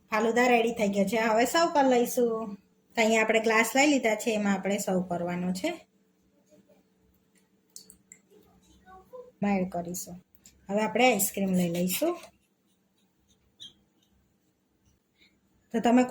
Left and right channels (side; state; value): both; identical; correlation 1.00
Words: ફાલુદા રેડી થઈ ગયો છે। હવે સર્વ કરી લઈશું। તો અહીંયા આપણે ગ્લાસ લઈ લીધા છે, એમાં આપણે સર્વ કરવાનો છે, એડ કરીશું। હવે આપણે આઈસ્ક્રીમ લઈ લઈશું। તો તમે